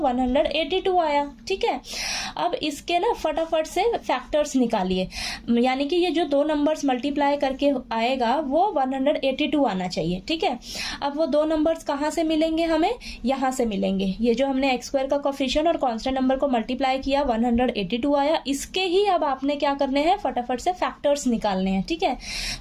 आया। ठीक है, अब इसके ना फटाफट से फैक्टर्स निकालिए, यानी कि ये जो दो नंबर्स मल्टीप्लाई करके आएगा वो 182 आना चाहिए। ठीक है, अब वो दो नंबर्स कहाँ से मिलेंगे, हमें यहाँ से मिलेंगे। ये जो हमने x स्क्वायर का कोफिशिएंट और कांस्टेंट नंबर को मल्टीप्लाई किया, 182 आया। इसके ही अब आपने क्या करने हैं, फटाफट से फैक्टर्स निकालने हैं। ठीक है,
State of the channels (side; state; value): both; identical; correlation 1.00